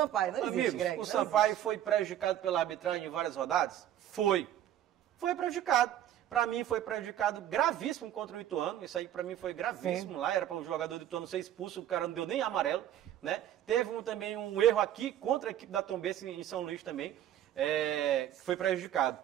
Não existe, amigos, Greg. o Sampaio foi prejudicado pela arbitragem em várias rodadas? Foi prejudicado. Para mim foi prejudicado gravíssimo contra o Ituano. Isso aí para mim foi gravíssimo. Sim. Lá era para o jogador do Ituano ser expulso, o cara não deu nem amarelo, né? Teve também um erro aqui contra a equipe da Tombense em São Luís também, foi prejudicado.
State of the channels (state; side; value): quieter; left; 11.5 dB